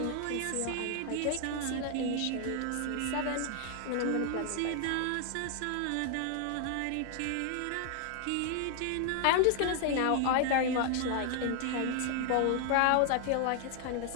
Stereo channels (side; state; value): both; different; correlation 0.00